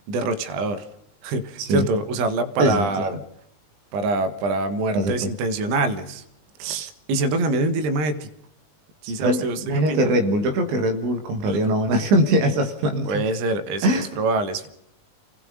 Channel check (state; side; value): late; left; 20 ms